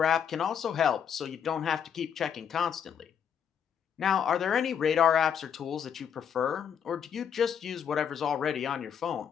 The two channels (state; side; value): quieter; right; 8.0 dB